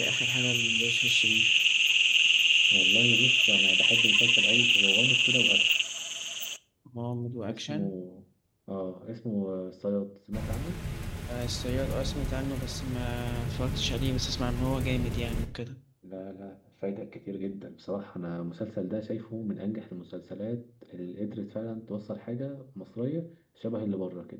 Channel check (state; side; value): identical; both; correlation 1.00